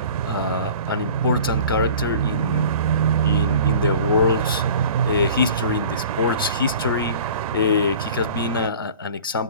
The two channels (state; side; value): inverted; both; correlation -0.43